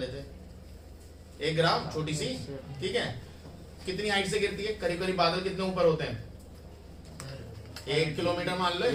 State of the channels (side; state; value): both; identical; correlation 1.00